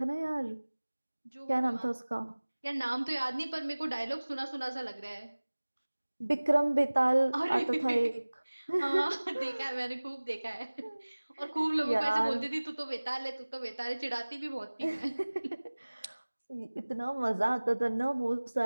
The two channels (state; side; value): inverted; both; correlation -1.00